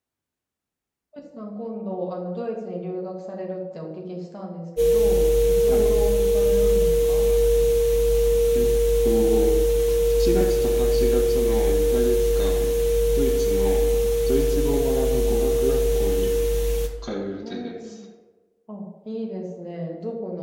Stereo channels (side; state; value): both; identical; correlation 1.00